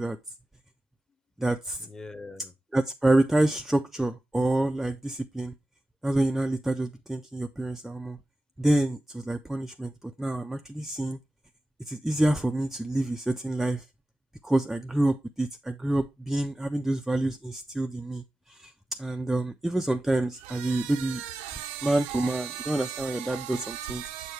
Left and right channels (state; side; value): normal; both; correlation 0.94